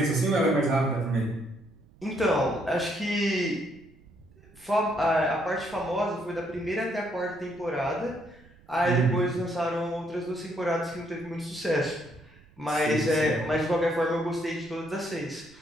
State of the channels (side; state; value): right; noise; rumble, 26 dB below the sound